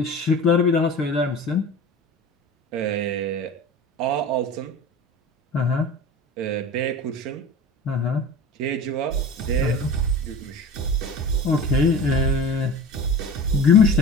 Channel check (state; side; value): normal; both; correlation 0.36